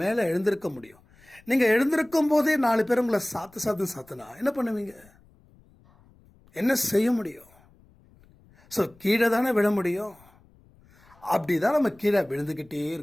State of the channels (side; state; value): left; noise; rumble, 29 dB below the sound